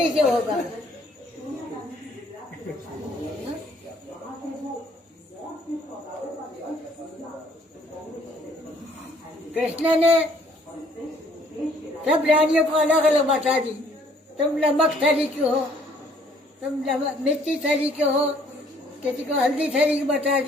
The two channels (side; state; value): both; normal; correlation 0.62